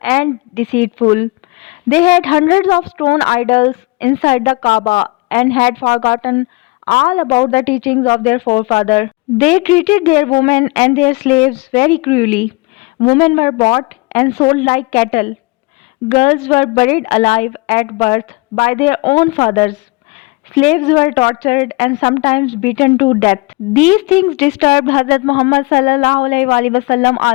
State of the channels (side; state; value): right; quieter; 25.6 dB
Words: deceitful. They had hundreds of stone idols inside the Kaaba and had forgotten all about the teachings of their forefathers. They treated their women and their slaves very cruelly. Women were bought and sold like cattle. Girls were buried alive at birth by their own fathers. Slaves were tortured and sometimes beaten to death. These things disturbed Hazrat Muhammad sallallahu alaihi wasallam